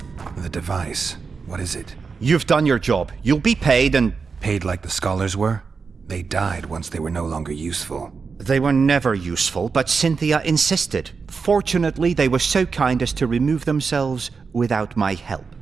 The device. What is it? You've done your job. You'll be paid and... Paid like the scholars were? They died once they were no longer useful. They were never useful, but Cynthia insisted. Fortunately, they were so kind as to remove themselves without my help.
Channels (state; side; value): quieter; left; 5.1 dB